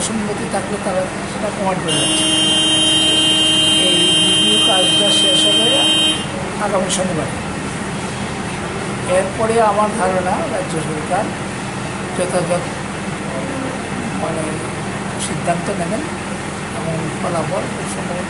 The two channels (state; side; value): identical; both; correlation 1.00